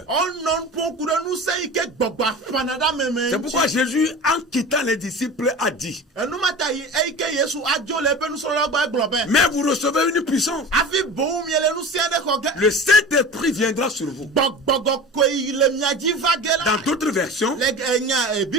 On non pon kure nou se ike gbogbo fanada me. C'est pourquoi Jésus, en quittant les disciples, a dit, Enu mata yi ike Yesu ajo le pe nou so lo gba globe. mais vous recevez une puissance. Afi bon miele nou se de ko ge. Le Saint-Esprit viendra sur vous. Gbogbo ko le miaji vage la. Dans d'autres versions,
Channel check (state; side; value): normal; both; correlation 0.34